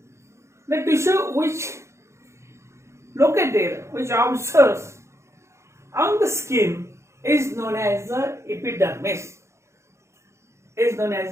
The tissue which located, which observes on the skin is known as the epidermis. Is known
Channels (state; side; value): late; left; 0.14 ms